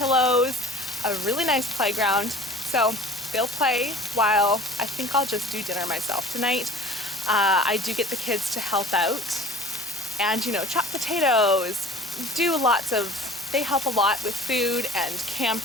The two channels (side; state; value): both; normal; correlation 0.44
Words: a really nice playground. So they'll play while I think I'll just do dinner myself tonight. I do get the kids to help out and, you know, chop potatoes, they help a lot with food and